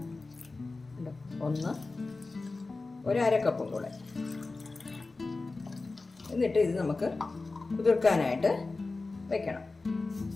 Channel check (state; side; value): quieter; right; 3.6 dB